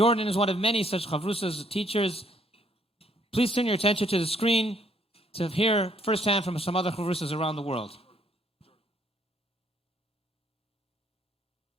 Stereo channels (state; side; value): normal; both; correlation 0.67